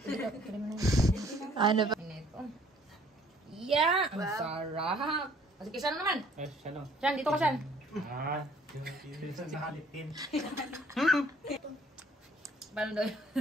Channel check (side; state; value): both; normal; correlation 0.58